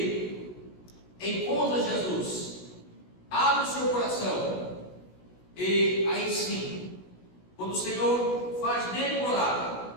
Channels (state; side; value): late; right; 16 ms